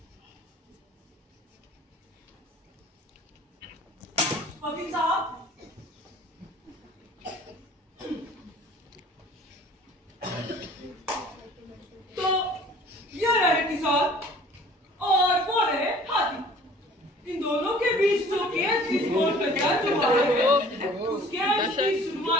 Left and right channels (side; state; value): both; normal; correlation 0.50